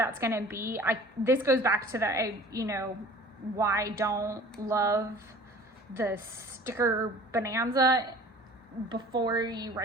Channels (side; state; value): both; normal; correlation 0.46